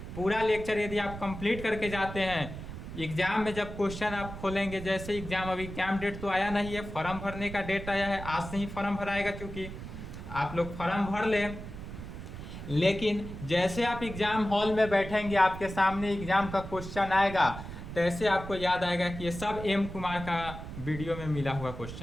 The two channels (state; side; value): noise; right; rumble, 10 dB below the sound